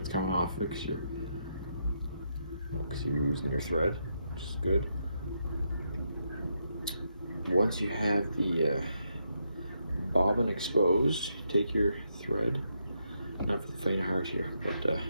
coming off it because you're losing your thread, which is good. Once you have the bobbin exposed, take your thread. Not for the faint of heart here, but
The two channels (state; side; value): inverted; both; correlation -0.80